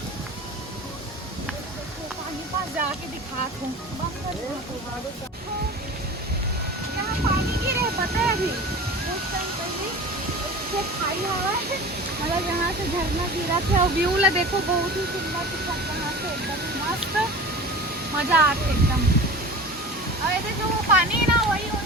पानी पास जाके दिखात हूँ। यहाँ पानी गिरे पता है अभी कुछ टाइम पहले खाई हवा मतलब यहाँ से झरना गिरा थे और व्यू ला देखो बहुत ही सुंदर दिखा यहाँ से एकदम मस्त मजा आते एकदम। और ऐसे जो वो पानी है ना वही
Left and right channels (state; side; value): normal; both; correlation 0.36